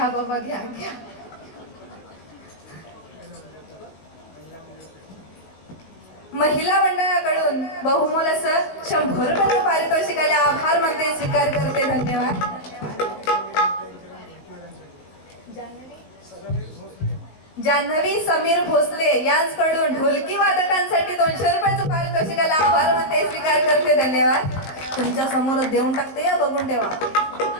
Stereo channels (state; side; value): late; right; 19 ms